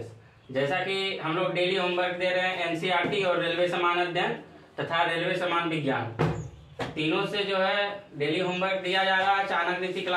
जैसा कि हम लोग डेली होमवर्क दे रहे हैं एनसीईआरटी और रेलवे समान अध्ययन तथा रेलवे समान विज्ञान, तीनों से जो है डेली होमवर्क दिया जा रहा है। Chanakya Niti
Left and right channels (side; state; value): both; identical; correlation 1.00